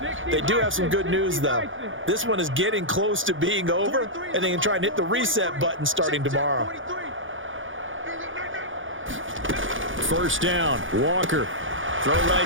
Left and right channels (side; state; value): left; late; 0.57 ms